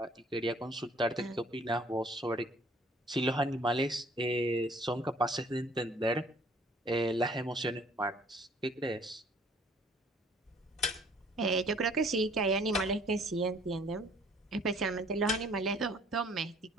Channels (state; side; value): normal; both; correlation 0.57